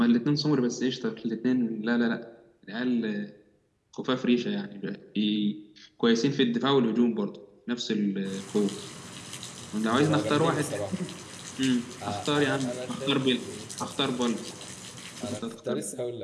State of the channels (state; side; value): identical; both; correlation 1.00